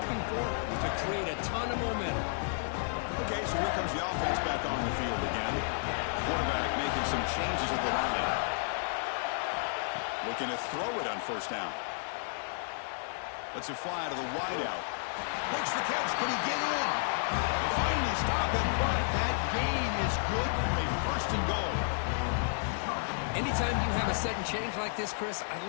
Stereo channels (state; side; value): silent; right; 56 dB below the other